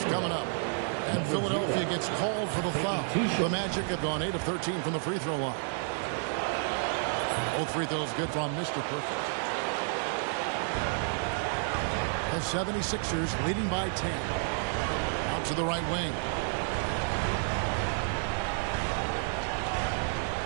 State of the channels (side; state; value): left; silent; 57 dB below the other